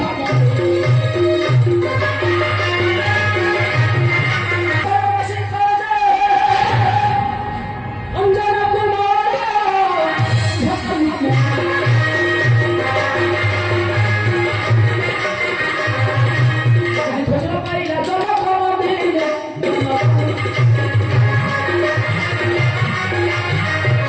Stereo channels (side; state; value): both; identical; correlation 1.00